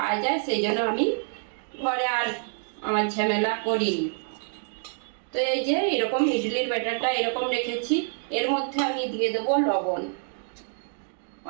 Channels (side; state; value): left; silent; 60 dB below the other